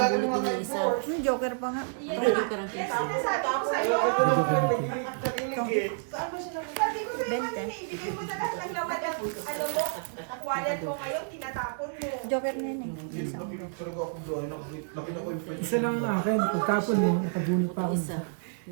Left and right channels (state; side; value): silent; left; digital silence